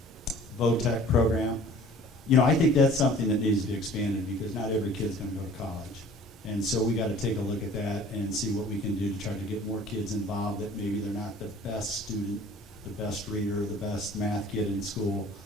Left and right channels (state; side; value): normal; both; correlation 0.49